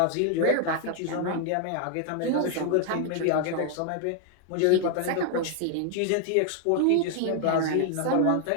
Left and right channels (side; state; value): both; different; correlation 0.00